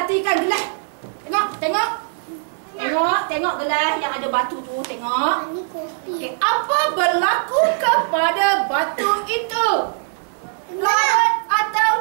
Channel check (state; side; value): silent; left; digital silence